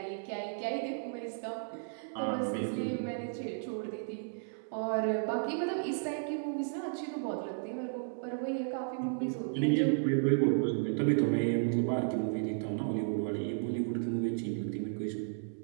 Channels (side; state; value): left; silent; digital silence